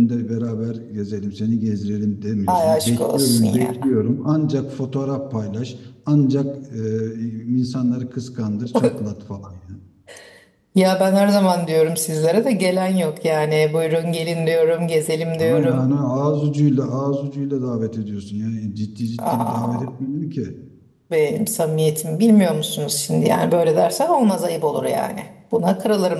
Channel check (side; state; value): both; identical; correlation 1.00